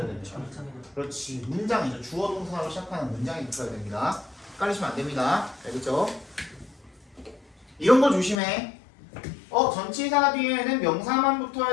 됩니까? 그렇지, 문장이죠. 주어 동사로 시작하는 문장이 붙어야 됩니다. 헷갈리시면 안 됩니다. 알겠죠? 이런 거 조심해. 전치사 뒤에는 명사만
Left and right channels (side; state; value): right; drops out; at 8.4 s